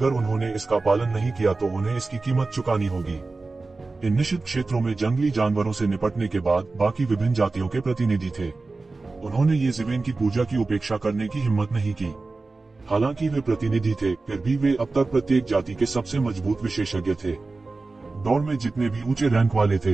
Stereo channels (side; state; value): left; quieter; 3.6 dB